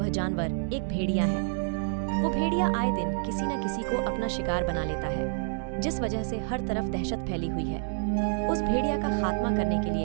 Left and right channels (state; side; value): silent; left; 59 dB below the other